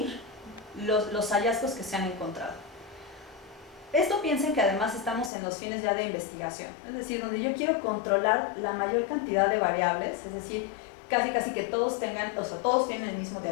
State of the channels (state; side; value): drops out; right; at 5.3 s